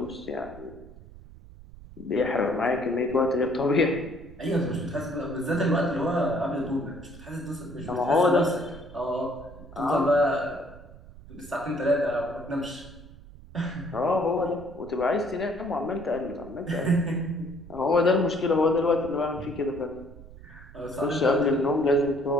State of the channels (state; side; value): noise; right; rumble, 18 dB below the sound